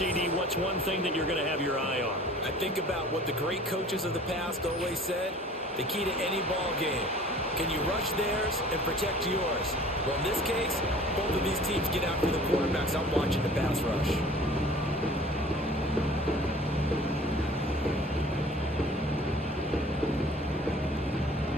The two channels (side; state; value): both; normal; correlation 0.48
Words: What's one thing that you're going to have your eye on? I think about what the great coaches of the past always said. The key to any ball game. Can you rush theirs and protect yours? Well, in this case, both of these teams get after the quarterbacks. I'm watching the pass rush.